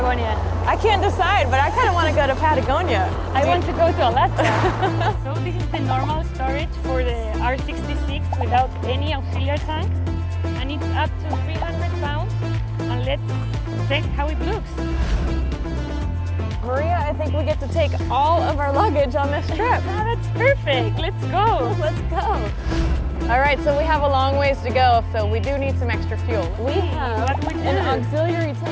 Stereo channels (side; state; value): both; identical; correlation 1.00